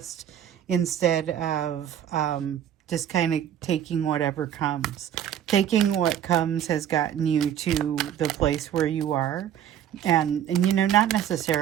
instead of just kind of taking whatever comes. Taking what comes has gotten you to the place where you are. And you know, not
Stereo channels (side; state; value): left; quieter; 10.1 dB